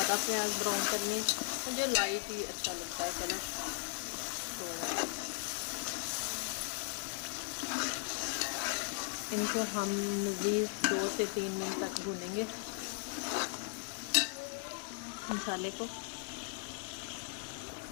प्याज ब्राउन करने, मुझे लाइट ही अच्छा लगता है कलर। तो इनको हम मज़ीद 2 से 3 मिनट तक भूनेंगे मसाले को।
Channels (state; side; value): silent; right; 53 dB below the other